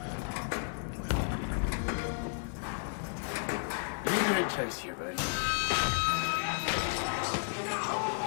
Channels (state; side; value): silent; right; 56 dB below the other